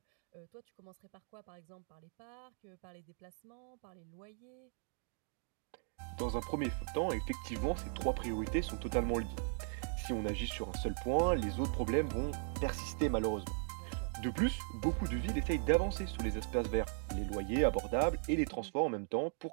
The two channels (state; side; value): silent; left; 52 dB below the other